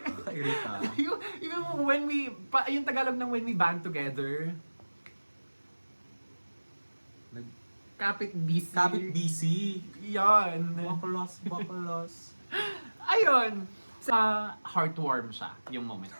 Irita. yung when we, yung Tagalog ng when we band together, kapit busy. Kapit BC. Yan. Baklas. Ayun. Sa heartwarm siya, yung moment.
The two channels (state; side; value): inverted; both; correlation -1.00